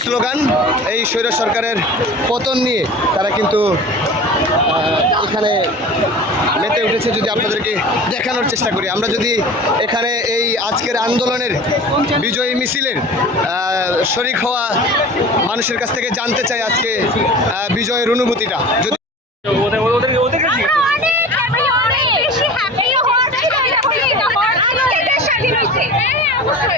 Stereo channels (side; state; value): both; normal; correlation 0.37